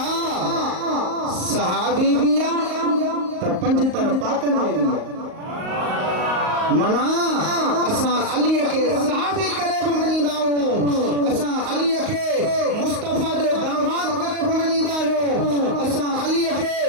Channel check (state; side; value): late; left; 38 ms